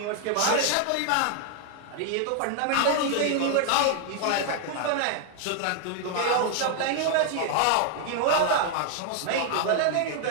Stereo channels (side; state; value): both; different; correlation 0.00